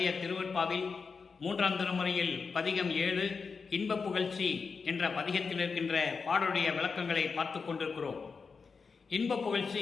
திருவற்பாவில் 3ஆம் திருமுறையில் பதிகம் 7 இன்ப புகழ்ச்சி என்ற பதிகத்தில் இருக்கின்ற பாடலுடைய விளக்கங்களை பார்த்து கொண்டிருக்கிறோம். இன்ப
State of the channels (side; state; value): right; quieter; 5.1 dB